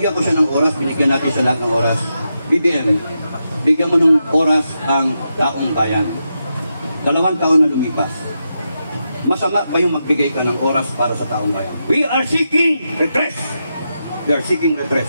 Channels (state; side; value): inverted; both; correlation -0.86